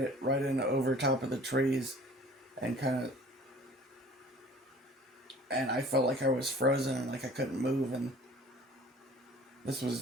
in over top of the trees, and and I felt like I was frozen and like I couldn't move. And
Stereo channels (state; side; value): normal; both; correlation 0.48